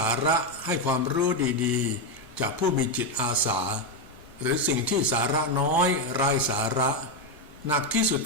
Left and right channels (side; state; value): both; normal; correlation 0.07